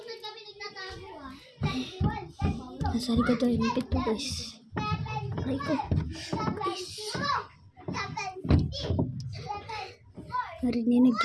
Kami nagtatago ah. Nasa likod tayo ng pinto guys. Aray ko. Guys. Narinig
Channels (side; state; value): both; identical; correlation 1.00